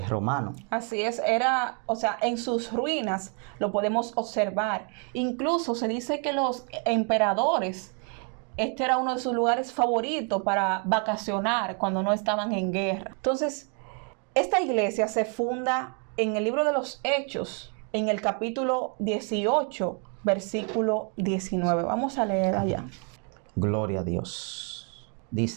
Romano. Así es, en sus ruinas lo podemos observar. Incluso se dice que los emperadores este era uno de sus lugares favoritos para vacacionar cuando no estaban en guerra. Entonces, esta iglesia se funda en el libro de los Hechos, en el capítulo 18, versículo 19. Vamos a leer allá. Gloria a Dios.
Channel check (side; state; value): left; quieter; 39.6 dB